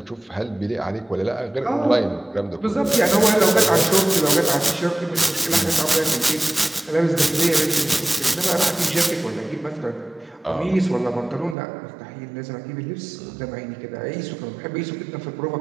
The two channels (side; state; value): left; drops out; at 11.6 s